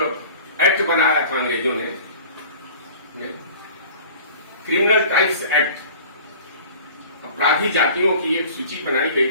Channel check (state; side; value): inverted; both; correlation -0.44